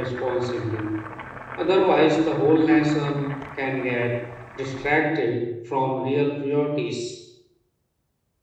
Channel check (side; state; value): both; identical; correlation 1.00